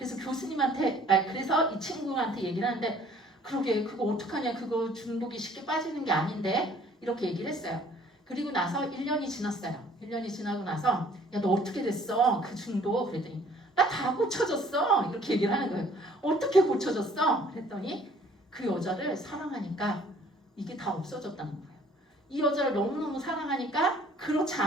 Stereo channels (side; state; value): both; normal; correlation 0.56